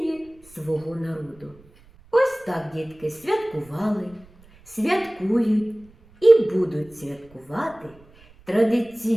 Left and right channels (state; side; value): noise; right; rumble, 27 dB below the sound